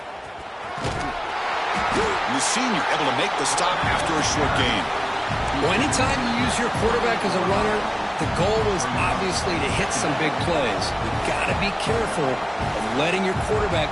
And the senior able to make the stop after a short gain. Well, anytime you use your quarterback as a runner, the goal is obviously to hit some big plays. You've got to be careful of letting your quarterback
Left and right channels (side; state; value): both; identical; correlation 1.00